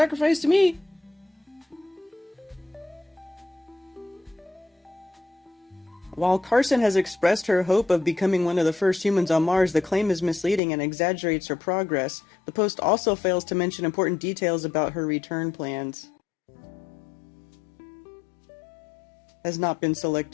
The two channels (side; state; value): right; drops out; at 10.6 s